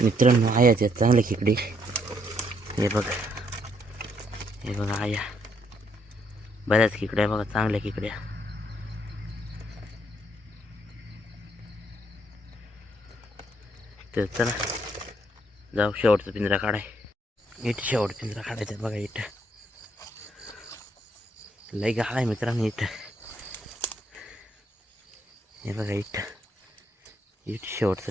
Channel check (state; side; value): normal; both; correlation 0.72